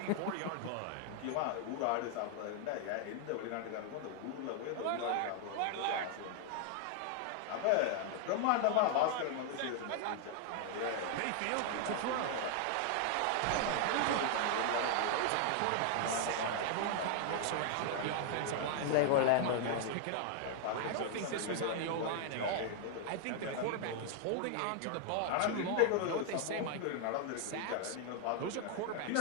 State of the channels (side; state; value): both; different; correlation 0.00